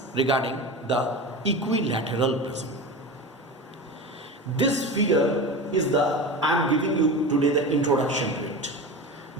regarding the equilateral prism. This figure is I am giving you today the introduction to it.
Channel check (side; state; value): both; normal; correlation 0.27